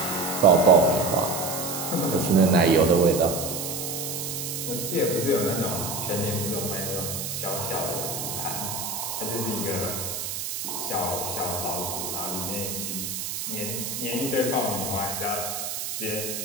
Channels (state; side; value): noise; right; hiss, 4 dB below the sound